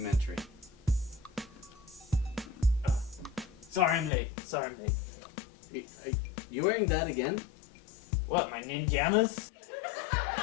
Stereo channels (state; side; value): drops out; right; at 4.1 s